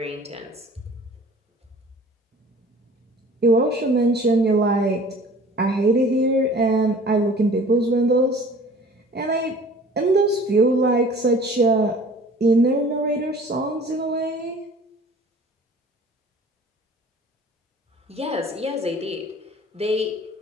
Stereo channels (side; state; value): both; normal; correlation 0.48